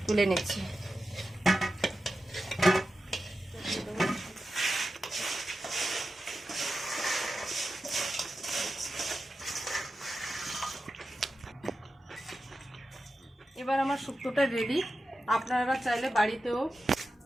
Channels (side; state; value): both; normal; correlation 0.91